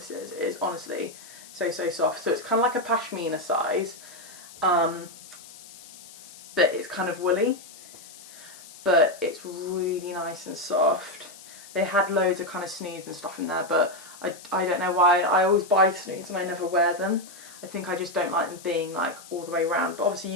is. It is honestly so, so soft. So it's kind of like a pashmina size, but it's kind of woolly, but it's really nice and soft. They had loads of kind of snoods and stuff in there, but I don't know why. I always buy snoods and I never wear them. I think I just don't like them being like all the way around, but obviously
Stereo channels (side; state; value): left; noise; hiss, 18 dB below the sound